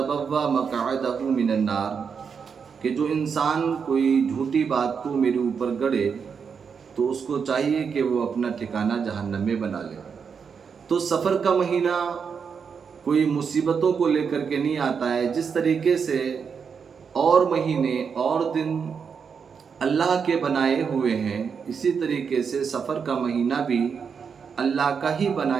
مقعدہ من النار، کہ جو انسان کوئی جھوٹی بات کو میرے اوپر گڑھے تو اس کو چاہیے کہ وہ اپنا ٹھکانہ جہنم میں بنا لے۔ تو سفر کا مہینہ کوئی مصیبتوں کو لے کر کے نہیں آتا ہے۔ جس طریقے سے اور مہینے اور دن اللہ کے بنائے ہوئے ہیں، اسی طریقے سے سفر کا مہینہ بھی اللہ کا ہی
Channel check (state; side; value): quieter; left; 6.3 dB